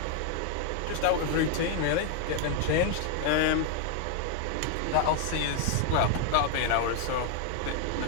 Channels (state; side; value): different; both; correlation 0.00